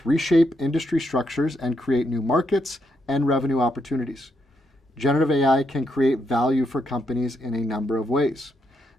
reshape industry structures and create new markets and revenue opportunities. Generative AI can create value for companies in a number of ways.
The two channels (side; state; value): both; normal; correlation 0.80